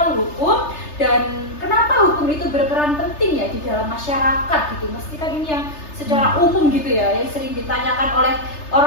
hukum dan kenapa hukum itu berperan penting ya di dalam masyarakat gitu. Mesti kan ini yang secara umum gitu ya, yang sering ditanyakan oleh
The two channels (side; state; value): right; late; 3.3 ms